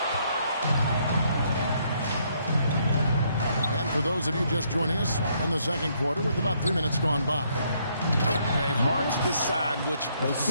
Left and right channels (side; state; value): both; inverted; correlation -0.70